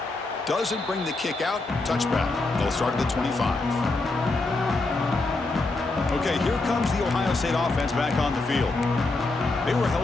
Doesn't bring the kick out. Touchback. They'll start at the 25. Okay, here comes the Ohio State offense back on the field. They were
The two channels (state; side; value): quieter; right; 3.2 dB